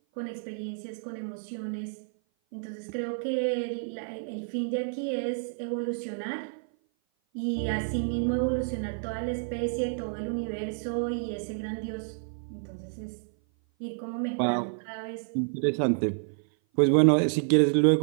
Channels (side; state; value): left; silent; 56 dB below the other